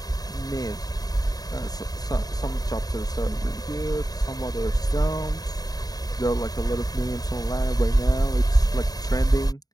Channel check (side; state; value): right; late; 0.18 ms